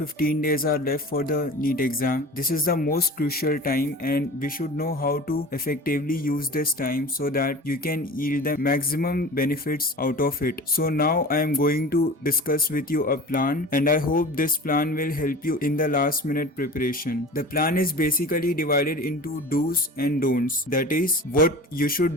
days are left for the NEET exam, this is the most crucial time and we should know how to effectively use this time so that you can yield the maximum benefits out of it. So now I am going to discuss with you a plan and I hope this plan will help you in the last minute preparation. The plan is basically divided into do's and don'ts. That is what you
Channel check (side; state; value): both; normal; correlation 0.37